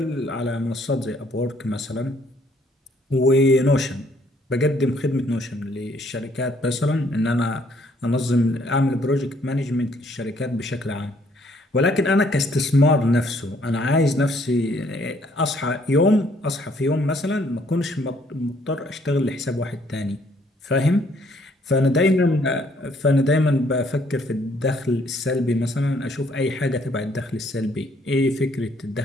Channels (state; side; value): normal; both; correlation 0.65